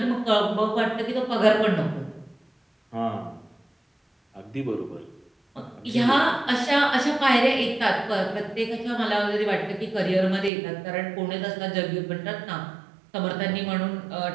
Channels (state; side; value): drops out; left; at 10.5 s